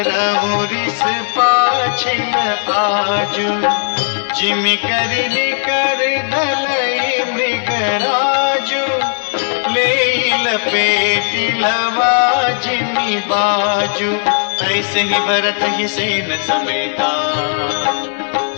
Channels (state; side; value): silent; right; digital silence